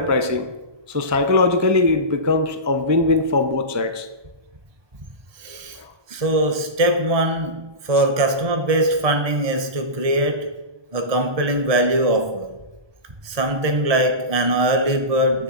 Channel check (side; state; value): left; late; 1.2 ms